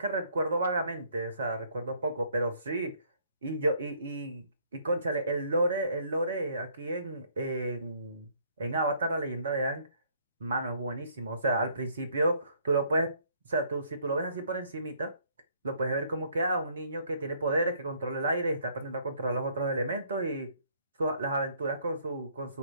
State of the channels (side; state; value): both; inverted; correlation -0.64